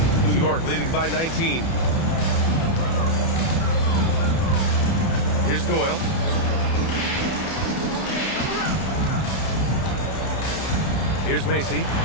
New York leading by 19. Here's Doyle. Here's Macy.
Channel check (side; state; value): right; late; 30 ms